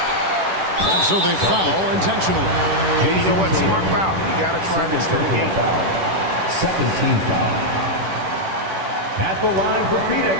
And so they foul intentionally. Hey, you know what? Smart foul. You got to try and extend the game. Second team foul. At the line for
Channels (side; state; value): left; late; 10 ms